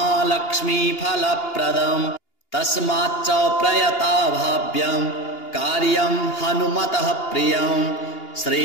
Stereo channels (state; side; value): late; right; 2.8 ms